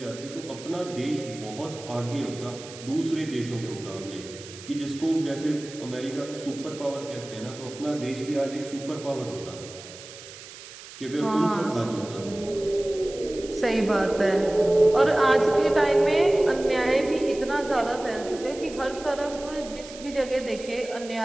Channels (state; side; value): noise; right; hiss, 16 dB below the sound